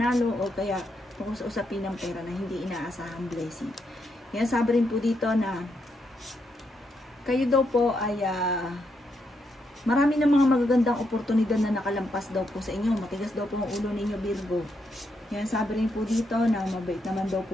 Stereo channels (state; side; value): normal; both; correlation 0.80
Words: o kaya tungkol sa usapin ng pera na hindi inaasahang blessing. Nasabi rin po dito na kayo daw po ay marami ng mga magagandang oportunidad na nakalampas daw po sa inyo. Matigas daw po ang ulo ninyo, Virgo. Yan, sabi rin po dito na mabait naman daw